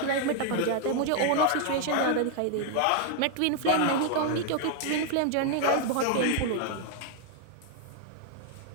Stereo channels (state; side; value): different; both; correlation 0.00